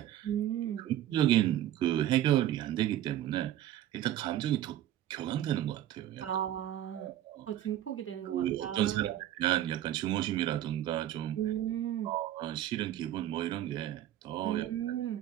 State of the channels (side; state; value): left; quieter; 12.4 dB